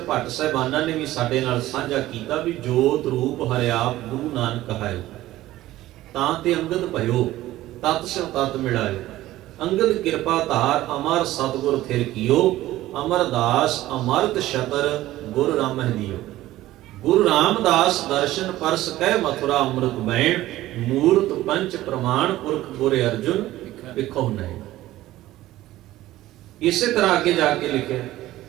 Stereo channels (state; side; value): quieter; left; 15.6 dB